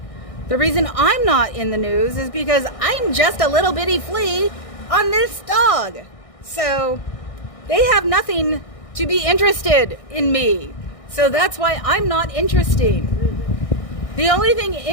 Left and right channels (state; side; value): late; right; 1.6 ms